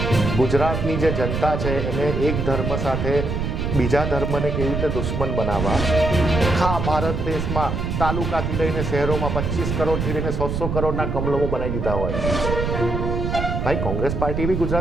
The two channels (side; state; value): right; noise; rumble, 2 dB below the sound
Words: ગુજરાતની જે જનતા છે એને એક ધર્મ સાથે બીજા ધર્મને કેવી રીતે દુશ્મન બનાવવા, આખા ભારત દેશમાં તાલુકાથી લઈને શહેરોમાં 25 કરોડથી લઈને 100 કરોડના કમલમો બનાવી દીધા હોય. ભાઈ, કોંગ્રેસ પાર્ટી બી